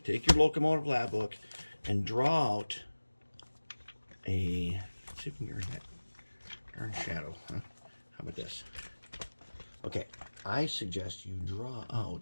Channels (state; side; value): inverted; both; correlation -1.00